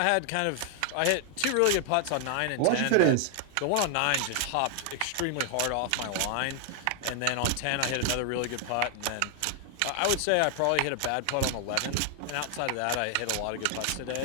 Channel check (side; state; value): both; different; correlation 0.00